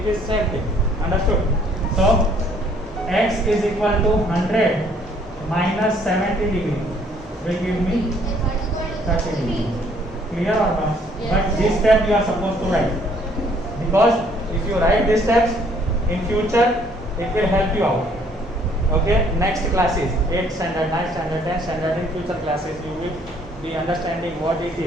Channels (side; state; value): both; normal; correlation 0.63